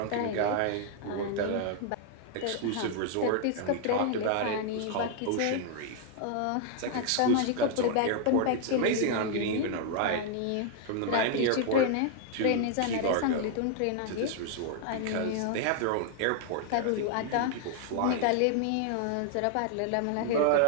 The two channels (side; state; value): both; different; correlation 0.00